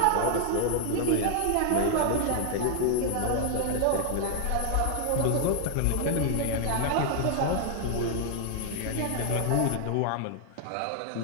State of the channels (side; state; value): both; different; correlation 0.00